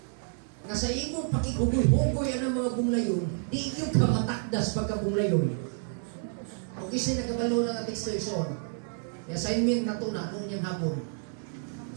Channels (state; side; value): silent; left; 56 dB below the other